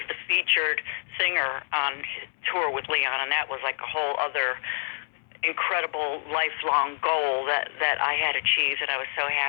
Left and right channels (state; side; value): silent; right; 60 dB below the other